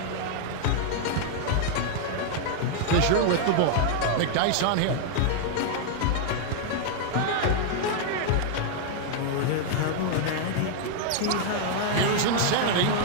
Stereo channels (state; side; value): different; both; correlation 0.00